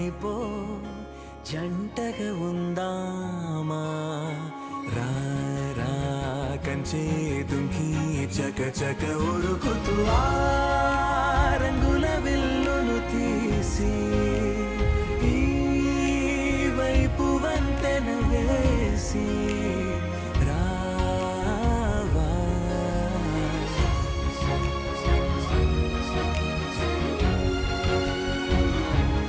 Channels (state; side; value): identical; both; correlation 1.00